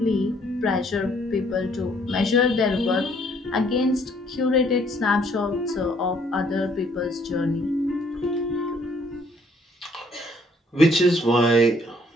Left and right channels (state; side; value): normal; both; correlation 0.64